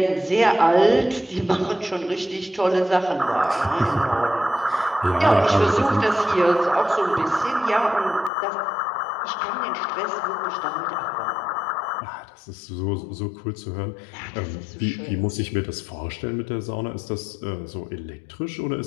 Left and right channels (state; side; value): drops out; right; at 8.3 s